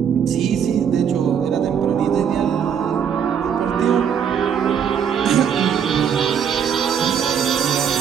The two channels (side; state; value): left; quieter; 7.9 dB